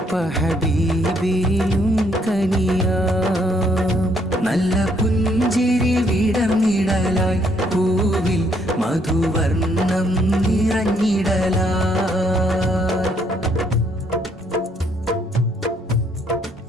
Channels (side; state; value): both; normal; correlation 0.69